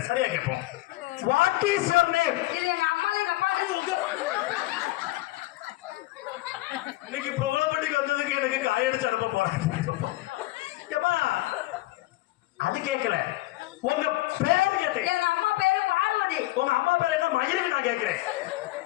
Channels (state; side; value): quieter; right; 18.7 dB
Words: சரியா கேட்போம். What is your name? இது எங்க அம்மா எங்க அப்பா. இன்னைக்கு புகழப்பட்டிக்கு வந்ததுக்கு எனக்கு காயடிச்சு அனுப்ப போறேன். அது கேட்கல. உங்க பேரு கேட்டேன். எங்க அம்மா பேரு பார்வதி. உங்க அம்மா பேரு என்ன மயிருக்கு நான் கேட்கிறேன்.